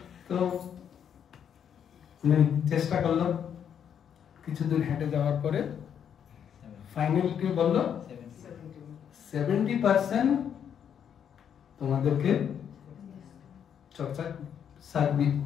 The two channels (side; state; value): right; quieter; 8.4 dB